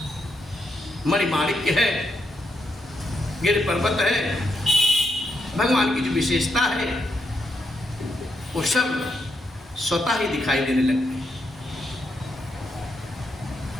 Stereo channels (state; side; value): normal; both; correlation 0.80